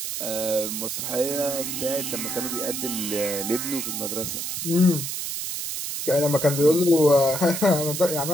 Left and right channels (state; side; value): noise; right; hiss, 4 dB below the sound